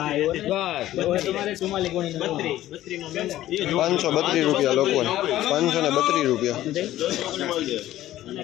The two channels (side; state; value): right; quieter; 14.1 dB